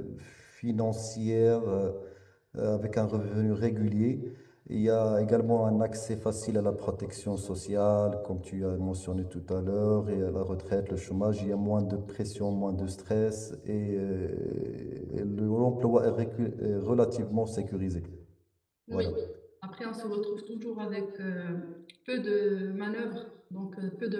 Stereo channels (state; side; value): identical; both; correlation 1.00